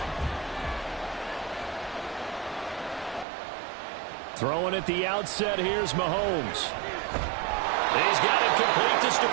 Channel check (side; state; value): left; drops out; at 3.2 s